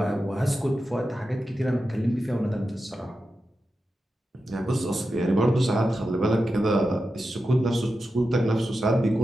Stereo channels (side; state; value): both; normal; correlation 0.91